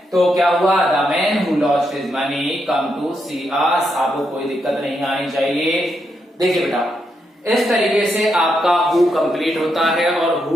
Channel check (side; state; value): both; normal; correlation 0.81